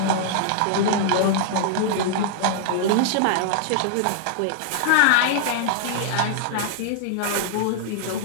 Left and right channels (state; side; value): different; both; correlation -0.01